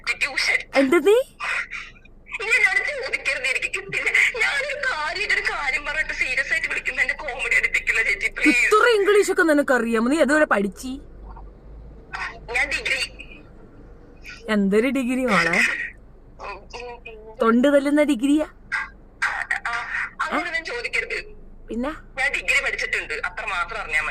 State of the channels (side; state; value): both; identical; correlation 1.00